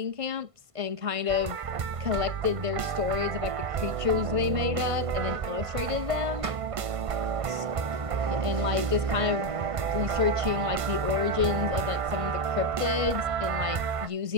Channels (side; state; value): left; late; 1.5 ms